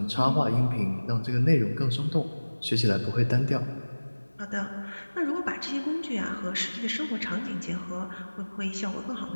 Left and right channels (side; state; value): both; inverted; correlation -1.00